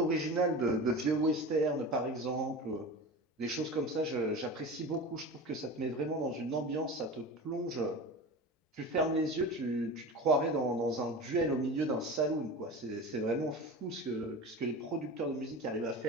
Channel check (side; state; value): both; normal; correlation 0.31